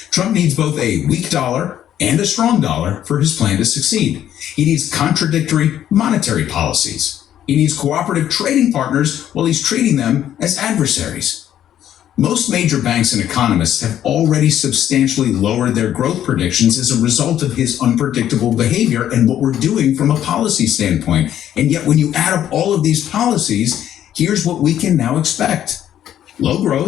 Trump needs both a weak dollar and a strong dollar for his plan to succeed. He needs contradictory monetary policies. He needs cooperative trading partners while he's treating them as adversaries. Most major banks and economists have already substantially lowered their growth predictions as a result of his unpredictable behavior and what we're doing from a policy standpoint. And yet when you add up all of these policies, here's what we can now expect. low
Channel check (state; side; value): quieter; right; 11.0 dB